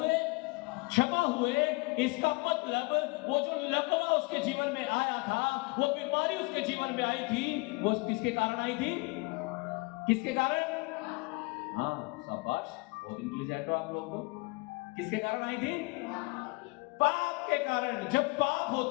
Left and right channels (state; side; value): quieter; right; 27.1 dB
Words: क्षमा हुए। इसका मतलब वो जो लकवा उसके जीवन में आया था, वो बीमारी उसके जीवन में आई थी, वो किसके कारण आई थी? किसके कारण? हाँ, शाबाश, बहुत इंटेलिजेंट हो आप लोग। को किसके कारण आई थी? पाप के कारण। जब पाप